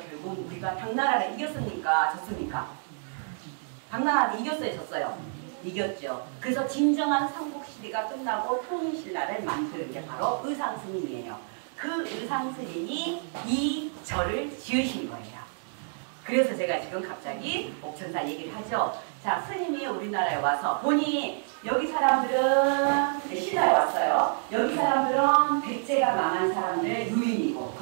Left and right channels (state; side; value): silent; left; digital silence